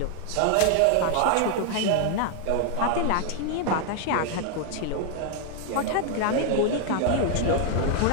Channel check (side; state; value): both; different; correlation 0.00